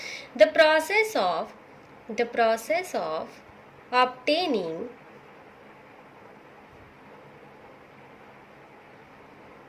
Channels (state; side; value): identical; both; correlation 1.00